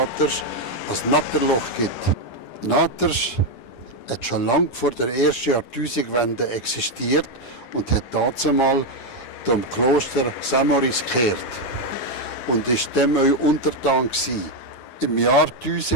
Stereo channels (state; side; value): late; right; 9.8 ms